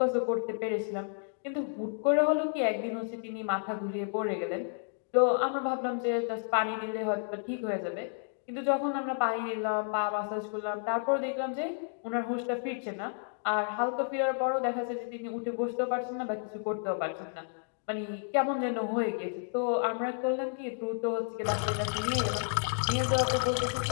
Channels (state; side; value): silent; right; digital silence